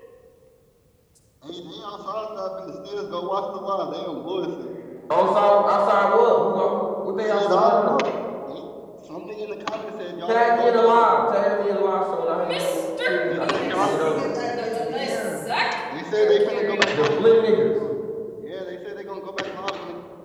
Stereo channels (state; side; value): identical; both; correlation 1.00